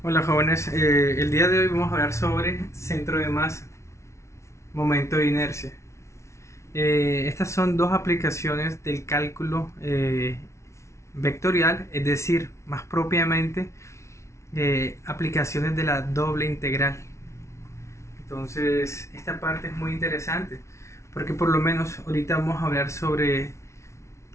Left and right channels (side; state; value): right; late; 0.13 ms